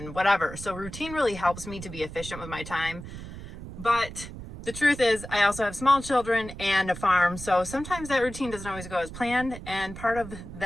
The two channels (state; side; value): noise; right; rumble, 12 dB below the sound